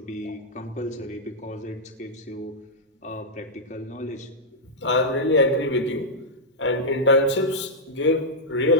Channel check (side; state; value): both; normal; correlation -0.06